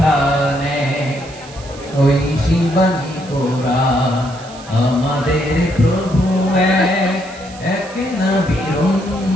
ওই শিবানী কোরআন। আমাদের প্রভু এক নবীর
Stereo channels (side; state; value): right; noise; hiss, 19 dB below the sound